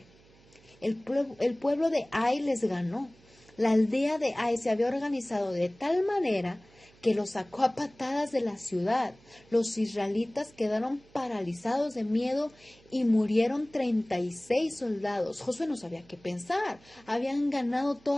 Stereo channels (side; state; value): right; noise; hum, 28 dB below the sound